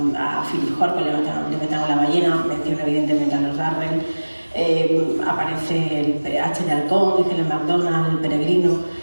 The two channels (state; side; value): inverted; both; correlation -1.00